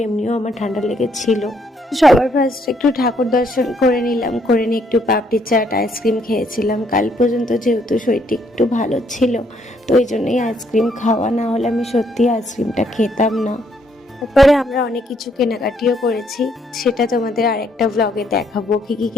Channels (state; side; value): normal; both; correlation 0.70